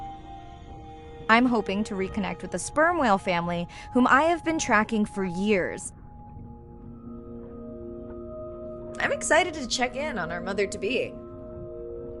I'm hoping to reconnect with the sperm whale family, whom I have been tracking for years. I'm excited to check in on our mother-to-be.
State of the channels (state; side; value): identical; both; correlation 1.00